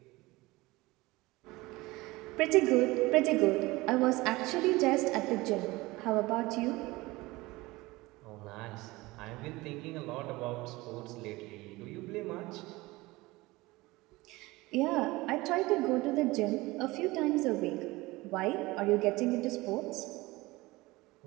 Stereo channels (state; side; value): quieter; left; 20.9 dB